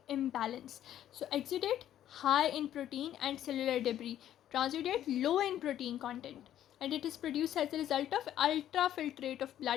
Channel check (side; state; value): right; quieter; 11.5 dB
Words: imbalance. So exudate high in protein and cellular debris, transudate low in protein content, and it is produced as a result of ultrafiltrate of